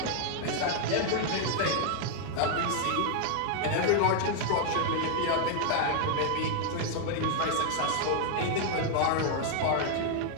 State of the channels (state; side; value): different; both; correlation 0.00